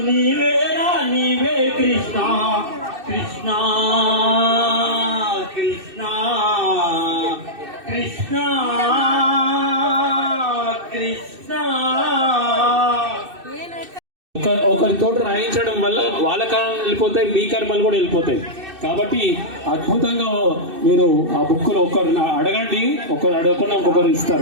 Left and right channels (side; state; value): left; late; 2.6 ms